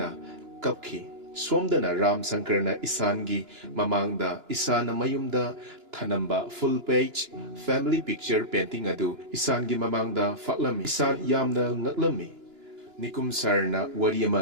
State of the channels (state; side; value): late; left; 2.9 ms